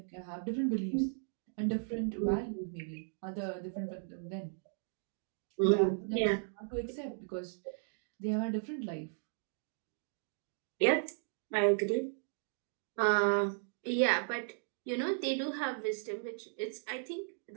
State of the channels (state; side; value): silent; left; digital silence